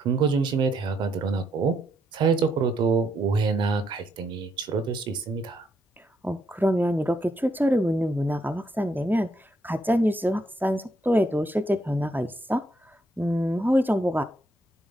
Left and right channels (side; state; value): both; normal; correlation 0.76